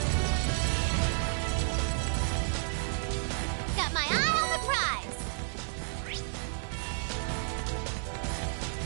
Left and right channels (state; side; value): silent; left; digital silence